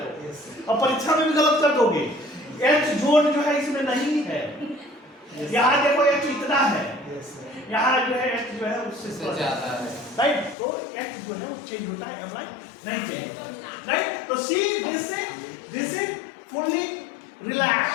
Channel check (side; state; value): right; drops out; at 10.6 s